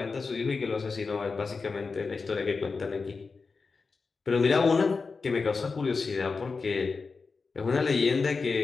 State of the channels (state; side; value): quieter; right; 4.5 dB